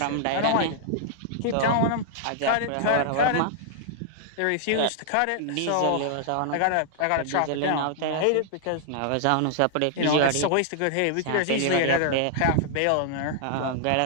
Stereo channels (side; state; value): both; different; correlation -0.01